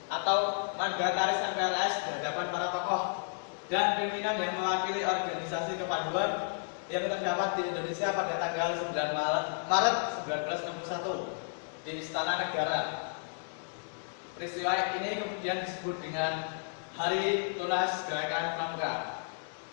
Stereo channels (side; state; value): right; silent; digital silence